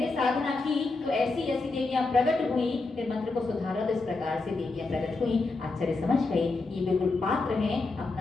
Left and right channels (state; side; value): quieter; right; 3.6 dB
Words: साधना की तो ऐसी ऐसी देवियां प्रकट हुई, फिर मंत्र को सुधारा तो इस प्रकार से देवियां प्रकट हुई। आचार्य समझ गए ये बिल्कुल पात्र हैं